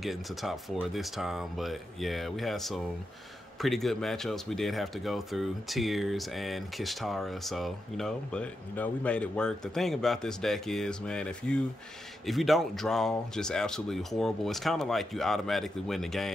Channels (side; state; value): both; normal; correlation 0.86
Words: into top 4 this time, but yeah, we had some pretty good matchups. We did have to go through Tears and Kishtara, so we made it work. The thing about this deck is, man, if you don't draw just absolutely horrible, it's kind of like you automatically win the